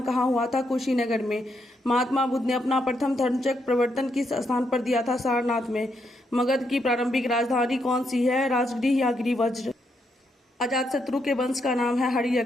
कहाँ हुआ था? कुशीनगर में। महात्मा बुद्ध ने अपना प्रथम धर्मचक्र प्रवर्तन किस स्थान पर दिया था? सारनाथ में। मगध की प्रारंभिक राजधानी कौन सी है? राजगृह या गिरिवज्र। अजातशत्रु के वंश का नाम है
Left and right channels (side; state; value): both; normal; correlation 0.79